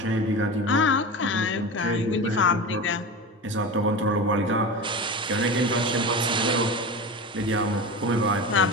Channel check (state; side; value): normal; both; correlation 0.27